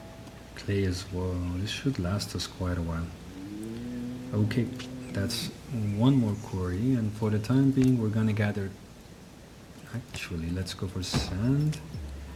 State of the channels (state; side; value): identical; both; correlation 1.00